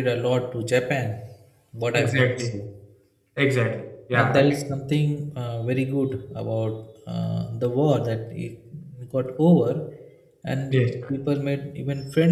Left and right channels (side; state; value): both; identical; correlation 1.00